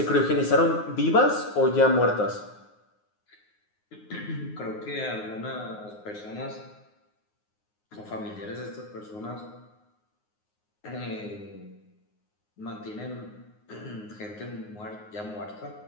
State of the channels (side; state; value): right; late; 9.6 ms